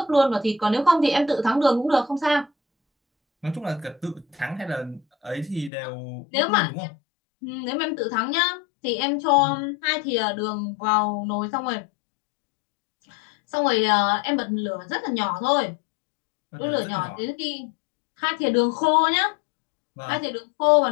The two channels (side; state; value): right; drops out; at 5.7 s